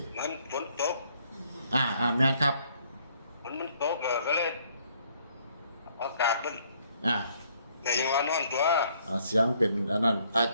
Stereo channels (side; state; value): both; inverted; correlation -0.66